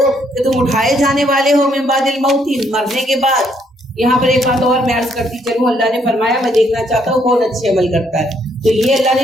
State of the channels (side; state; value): both; normal; correlation 0.70